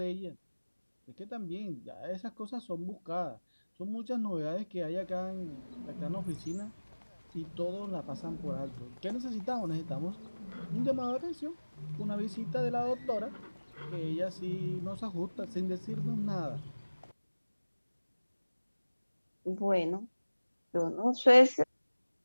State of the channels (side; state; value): both; inverted; correlation -1.00